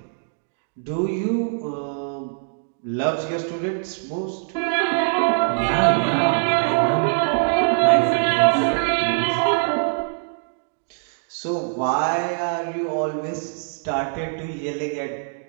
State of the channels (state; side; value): silent; left; digital silence